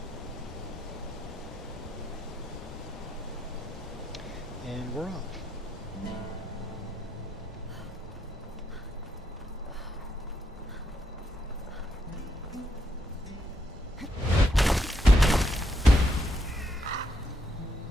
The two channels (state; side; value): normal; both; correlation 0.78